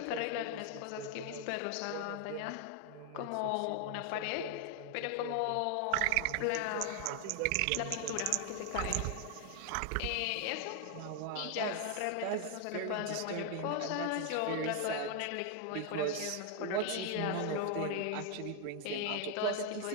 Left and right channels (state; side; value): different; both; correlation 0.00